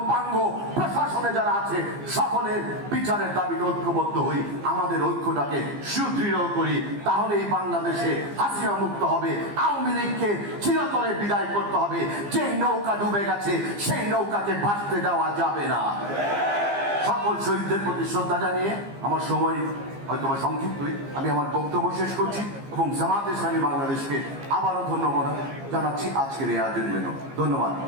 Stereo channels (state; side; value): late; left; 15 ms